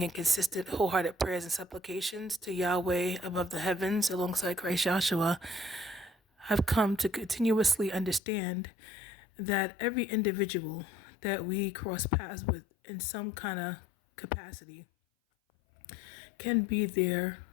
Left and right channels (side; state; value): right; drops out; at 8.2 s